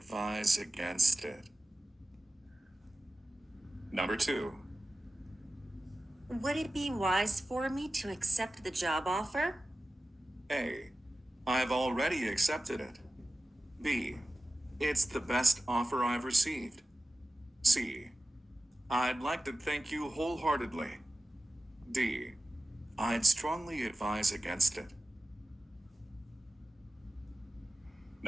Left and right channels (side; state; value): both; normal; correlation 0.95